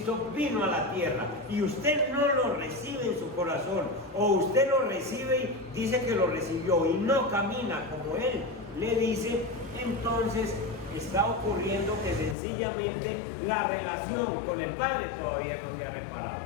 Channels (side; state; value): right; drops out; at 12.4 s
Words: vino a la tierra y usted no lo recibe en su corazón, o usted lo recibe y dice que lo recibió y no camina como Él le dice, entonces está ocurriendo que sencillamente la relación con el Padre todavía no se ha reparado.